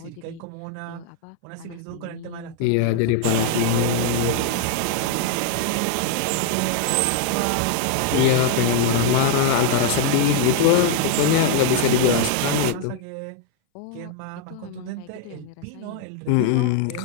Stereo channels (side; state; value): both; different; correlation 0.00